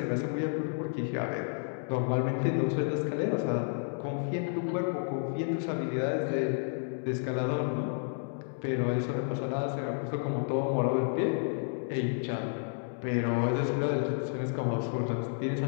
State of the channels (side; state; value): right; silent; digital silence